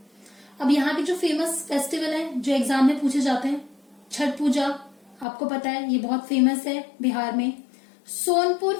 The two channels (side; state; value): right; drops out; at 5.2 s